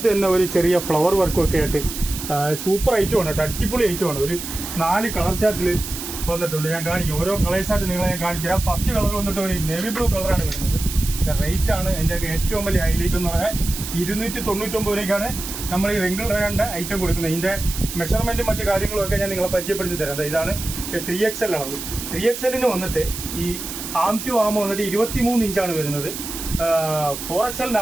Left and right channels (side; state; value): right; noise; hiss, 8 dB below the sound